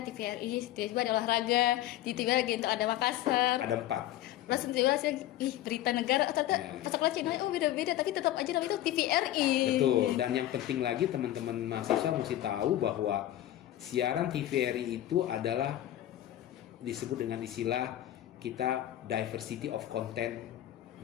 TVRI, tiba-tiba ada olahraga, tiba-tiba lagi untuk ada Makassar. Ada 4. Langsung tiba-tiba berita negara, ternyata pas channelnya beda-beda, tapi tetap aja namanya itu TVRI. Betul, dan yang penting lagi teman-teman mahasiswa mesti tahu bahwa siaran TVRI itu adalah disebut dengan istilah kita diversity of content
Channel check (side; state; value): right; quieter; 13.5 dB